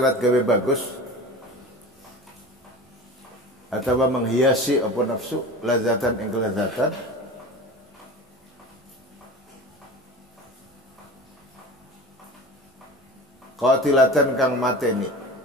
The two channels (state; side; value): normal; both; correlation 0.34